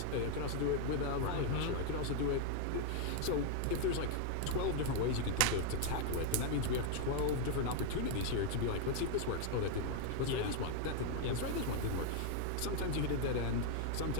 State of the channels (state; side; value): different; both; correlation 0.00